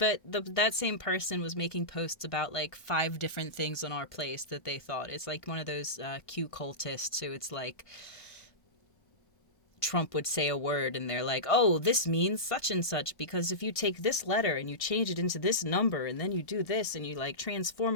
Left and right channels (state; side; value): late; right; 1.6 ms